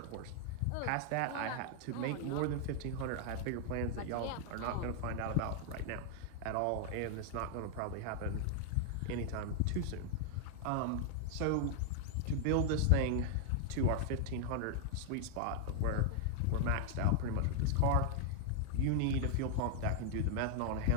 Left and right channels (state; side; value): different; both; correlation 0.00